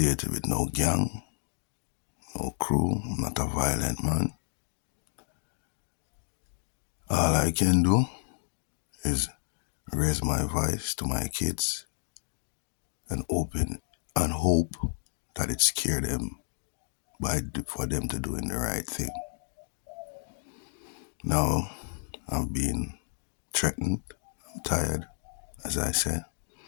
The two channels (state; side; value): silent; right; digital silence